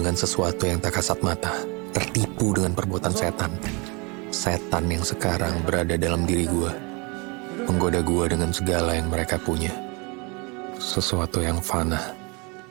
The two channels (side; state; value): left; quieter; 29.5 dB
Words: sesuatu yang tak kasat mata. Tertipu dengan perbuatan setan. Setan yang sekarang berada dalam diri gue. Menggoda gue dengan segala yang mereka punya. Sesuatu yang fana.